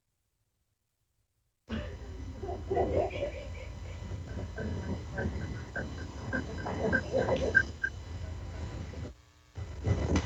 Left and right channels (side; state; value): both; identical; correlation 1.00